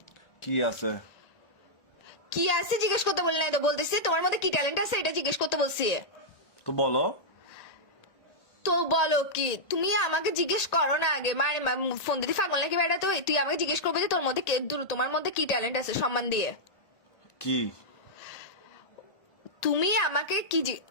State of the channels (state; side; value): late; right; 1.8 ms